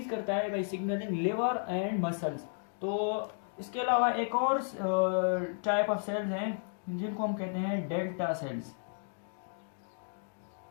करता है by signalling liver and muscles. तो इसके अलावा एक और टाइप ऑफ सेल्स हैं जिनको हम कहते हैं डेल्टा सेल्स।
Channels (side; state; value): right; silent; digital silence